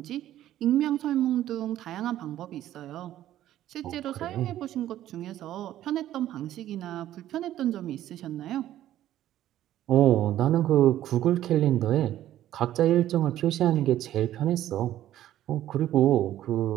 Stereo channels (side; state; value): left; quieter; 12.8 dB